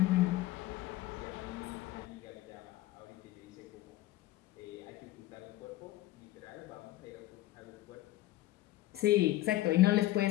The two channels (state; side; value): quieter; right; 16.2 dB